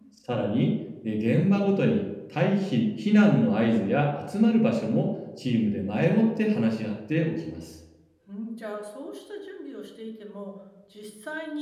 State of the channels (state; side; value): identical; both; correlation 1.00